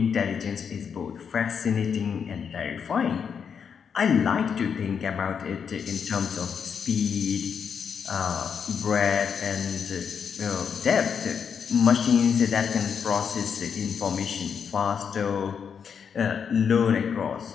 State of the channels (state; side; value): quieter; right; 6.9 dB